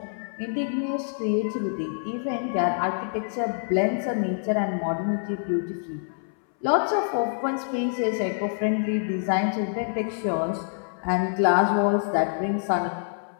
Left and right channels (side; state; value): right; silent; 61 dB below the other